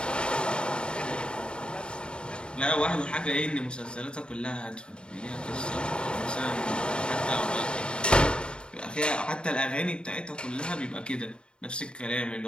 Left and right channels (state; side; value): late; right; 0.052 ms